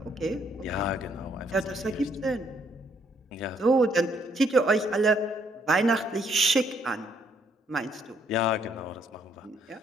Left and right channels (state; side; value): normal; both; correlation 0.70